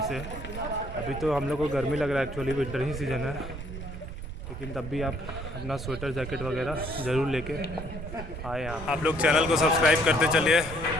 से। अभी तो हम लोग को गर्मी लग रहा है, एक्चुअली विंटर ही सीज़न है, लेकिन तब भी आप अपना स्वेटर, जैकेट वगैरह ज़रूर लेके आए यहाँ। आप लोग चैनल को सब्सक्राइब करते चलिए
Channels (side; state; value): right; noise; rumble, 9 dB below the sound